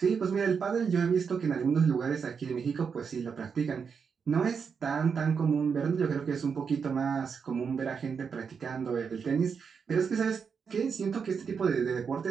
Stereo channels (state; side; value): quieter; left; 6.1 dB